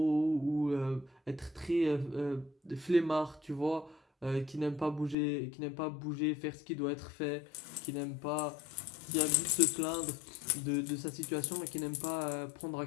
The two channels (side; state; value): right; drops out; at 5.2 s